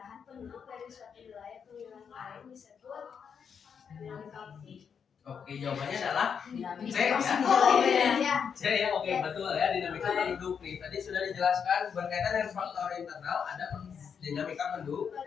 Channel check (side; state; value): right; quieter; 6.9 dB